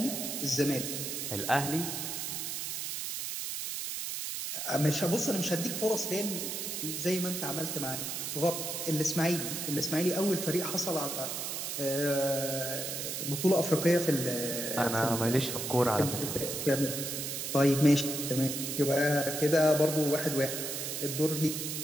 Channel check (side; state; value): right; noise; hiss, 4 dB below the sound